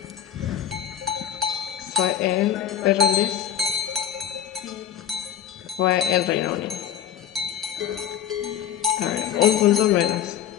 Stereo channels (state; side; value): quieter; right; 10.0 dB